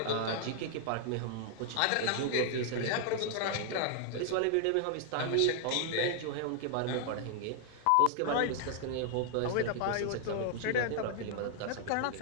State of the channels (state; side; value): different; both; correlation 0.00